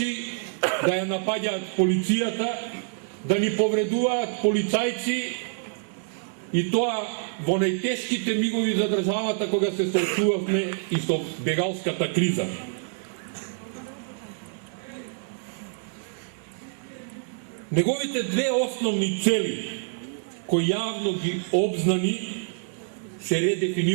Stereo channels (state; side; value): silent; left; 61 dB below the other